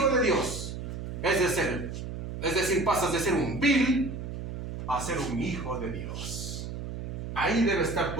de Dios. Es decir, pasas de ser un vil a ser un hijo de Dios. Ahí debe estar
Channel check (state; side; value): noise; right; hum, 7 dB below the sound